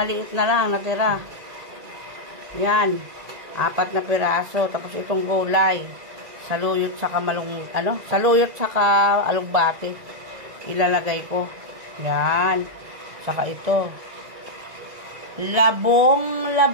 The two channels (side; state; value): left; late; 1.9 ms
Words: na lang natira. Yan, 4 na piraso. Tapos itong gulay, saluyot saka saluyot saka alugbate. Ilalagay ko. Yan. Saka ito. Labong.